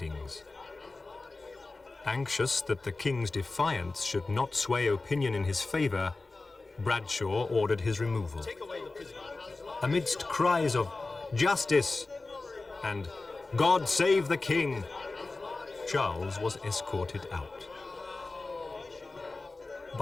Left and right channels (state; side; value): quieter; right; 3.4 dB